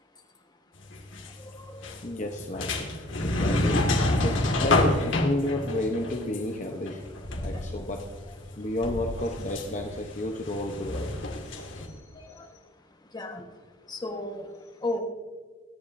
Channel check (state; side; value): normal; both; correlation 0.53